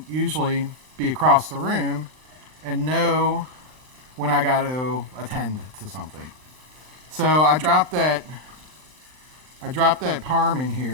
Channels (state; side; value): late; left; 39 ms